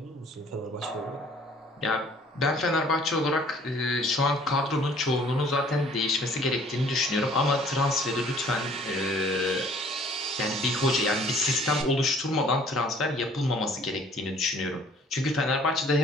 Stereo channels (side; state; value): both; normal; correlation 0.55